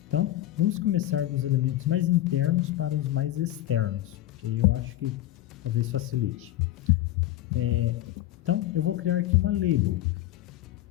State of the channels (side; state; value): right; quieter; 14.4 dB